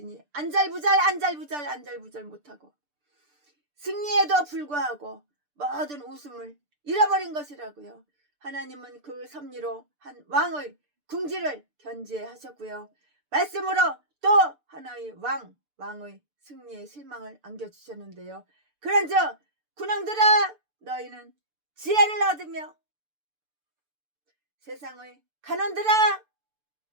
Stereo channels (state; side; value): late; left; 6.8 ms